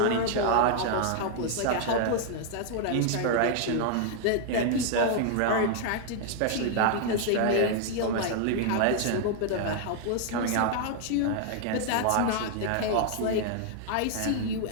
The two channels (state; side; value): different; both; correlation 0.00